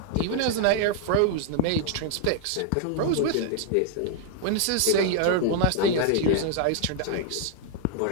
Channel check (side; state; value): both; different; correlation 0.00